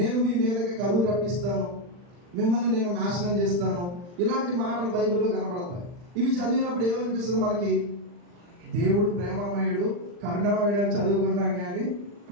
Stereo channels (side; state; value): left; late; 40 ms